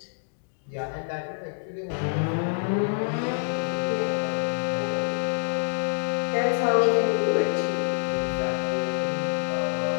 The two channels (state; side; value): silent; right; digital silence